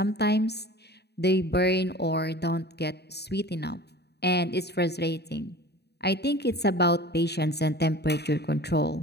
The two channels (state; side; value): late; right; 0.48 ms